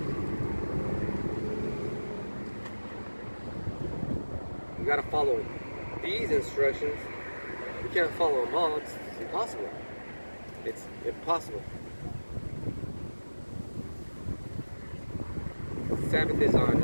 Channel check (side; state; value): both; inverted; correlation -1.00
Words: You gotta follow these instructions. You can't follow them all. It's impossible. It's impossible. Sabbath is on